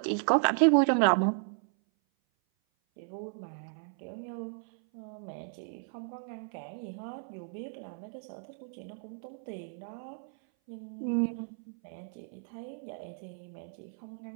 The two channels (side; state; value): left; silent; 55 dB below the other